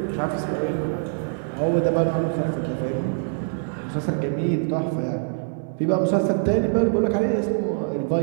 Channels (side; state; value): left; silent; 58 dB below the other